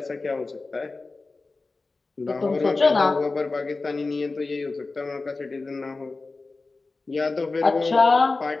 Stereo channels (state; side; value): quieter; right; 3.7 dB